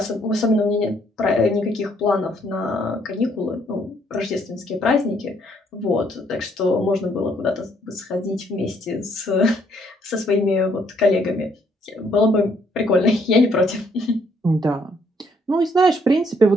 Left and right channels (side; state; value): both; normal; correlation 0.68